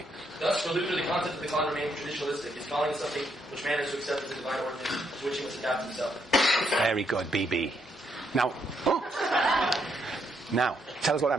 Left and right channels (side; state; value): both; normal; correlation 0.76